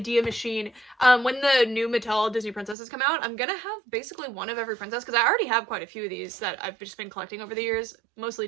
machine. When the new Mattel Disney princesses come out, I'm gonna have basically one of every princess, because I already have quite a few of these that I've just been collecting over the years,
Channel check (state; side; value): drops out; left; at 2.8 s